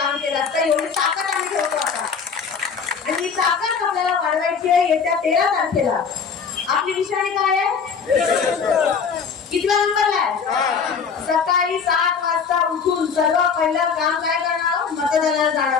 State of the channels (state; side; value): quieter; right; 6.0 dB